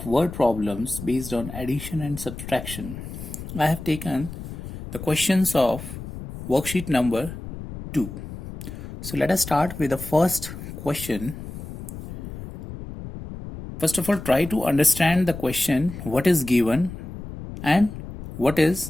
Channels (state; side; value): noise; left; rumble, 11 dB below the sound